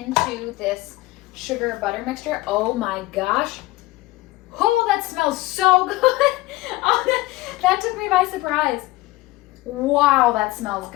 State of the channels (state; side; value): quieter; right; 19.0 dB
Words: this sugar butter mixture. Oh my gosh. Oh, that smells so good. Oh, that took me by surprise. Wow, that smells